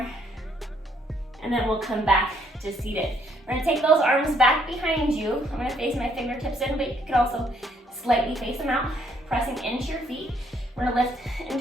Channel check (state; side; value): normal; both; correlation 0.68